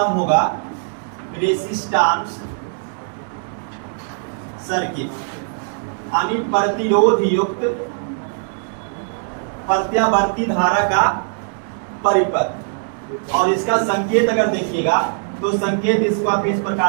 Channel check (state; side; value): silent; left; digital silence